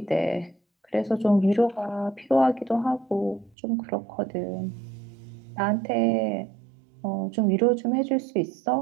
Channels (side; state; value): left; drops out; at 3.6 s